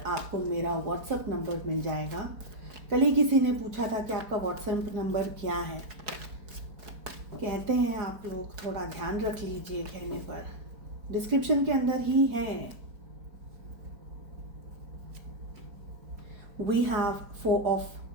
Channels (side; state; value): left; late; 4.6 ms